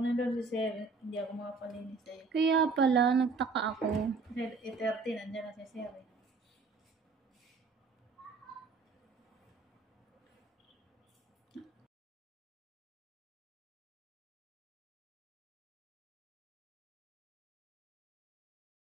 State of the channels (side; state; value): left; quieter; 4.3 dB